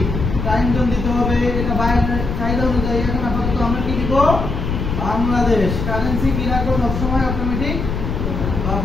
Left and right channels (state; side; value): noise; left; rumble, 3 dB below the sound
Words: টাইম জোন দিতে হবে। এটা বাইরের চাহিদা অনুযায়ী এখন আপাতত আমরা কি দিব? বাংলাদেশ। কারেন্সি কি রাখবো? সবসময় অটোমেটিক বা